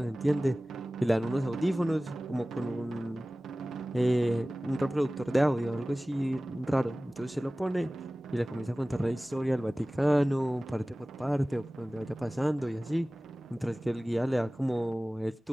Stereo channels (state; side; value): normal; both; correlation 0.98